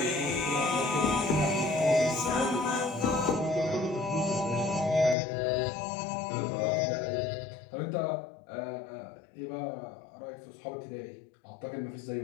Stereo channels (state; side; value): drops out; right; at 5.2 s